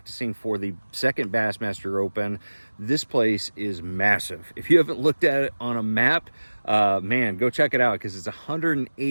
for the second Bassmaster Open. This place is massive. If you haven't looked at it on a map, man, go check it out, because it's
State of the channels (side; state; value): both; inverted; correlation -1.00